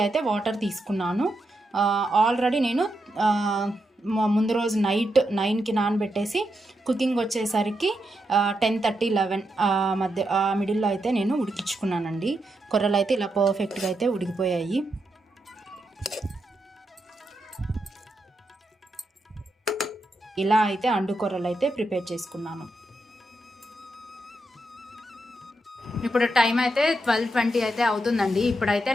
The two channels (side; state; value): both; normal; correlation 0.84